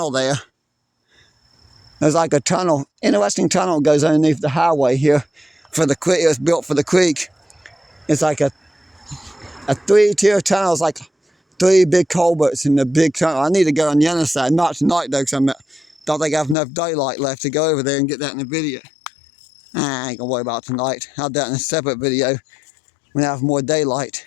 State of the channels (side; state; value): right; drops out; at 16.6 s